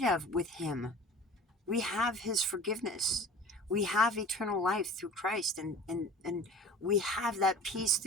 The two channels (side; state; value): both; normal; correlation 0.42